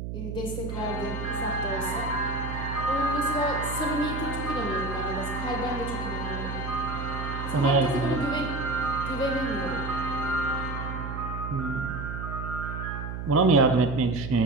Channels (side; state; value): right; noise; hum, 5 dB below the sound